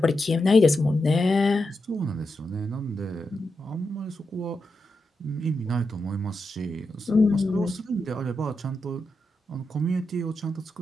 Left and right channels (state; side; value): normal; both; correlation 0.87